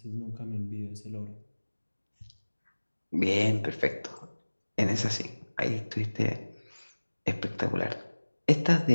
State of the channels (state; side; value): inverted; both; correlation -1.00